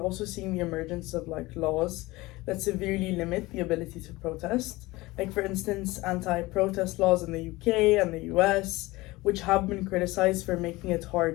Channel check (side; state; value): right; quieter; 20.5 dB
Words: also seeing the emergence of like laws that severely limit the ability to protest. Like for instance, anti-protest laws in the UK and the US, which have been criticized for making it